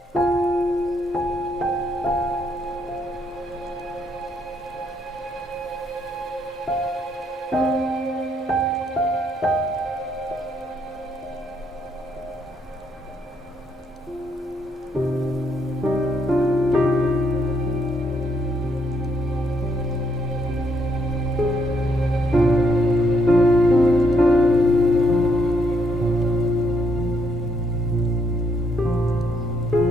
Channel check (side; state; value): both; normal; correlation 0.73